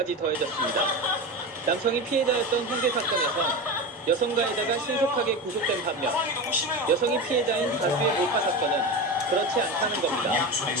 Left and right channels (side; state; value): both; normal; correlation 0.23